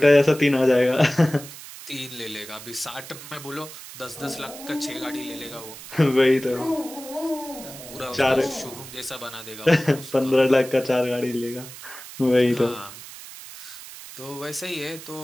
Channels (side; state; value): right; noise; hiss, 14 dB below the sound